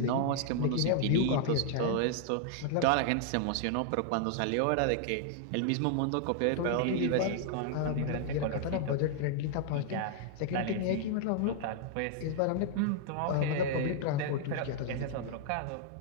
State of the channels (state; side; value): different; both; correlation -0.01